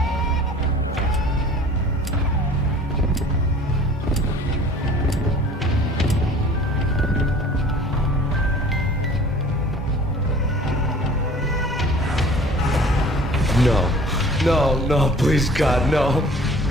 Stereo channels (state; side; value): normal; both; correlation 0.48